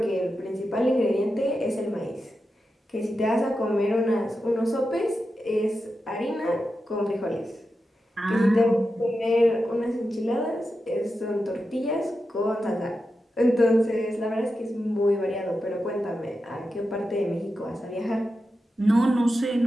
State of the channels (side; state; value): both; normal; correlation 0.90